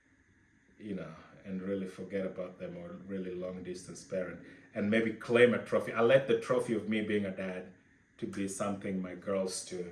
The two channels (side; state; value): both; identical; correlation 1.00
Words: and really forget about them, or really long distance parent and maybe claim a trophy. I let the trophy of me being a dad to be something my girls